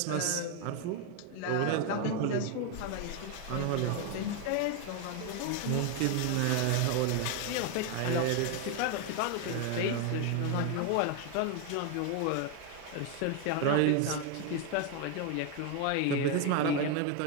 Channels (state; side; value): different; both; correlation 0.01